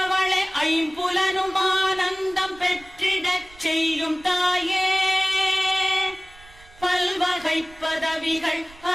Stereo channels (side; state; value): right; noise; rumble, 24 dB below the sound